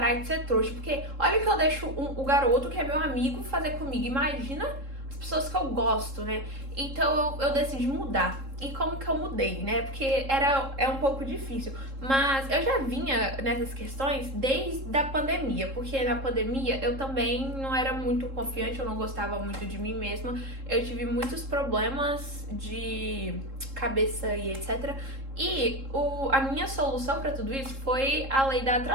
de ser trouxa, porque olha que eu deixo o garoto, que é meu amigo, fazer comigo. Imagina as pessoas que eu gosto, né? Então eu decidi mudar. E como que eu mudei, né? Porque é um pouco difícil. Mas eu já vinha nessas questões desde a pandemia. Porque na pandemia eu também não era muito confiante, eu não gostava muito de mim mesma. Eu tive muitos problemas de cabeça e etc. E a minha solução pra tudo isso foi a lei da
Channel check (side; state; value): left; late; 3.7 ms